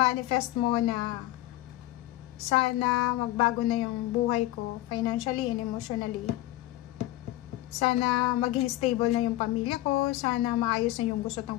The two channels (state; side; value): quieter; right; 16.3 dB